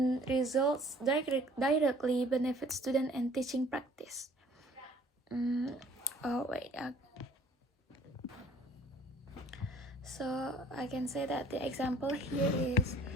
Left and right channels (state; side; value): normal; both; correlation 0.55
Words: results directly benefit student and teaching practice. So I can say that the example here is